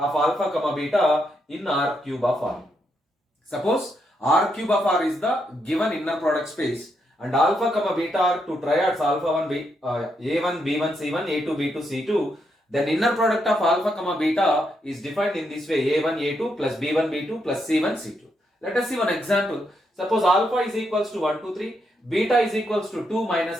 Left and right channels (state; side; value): normal; both; correlation 0.80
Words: alpha comma beta in R cube of R. Suppose R cube of R is the given inner product space and alpha comma beta are two triads alpha 1 B, A1 B1 C1 A2 B2 C2. Then inner product of alpha comma beta is defined in this way A1 A2 plus B1 B2 plus C1 C2. Let us see one example. Suppose alpha is equals to 1 2 3, beta is equals to 2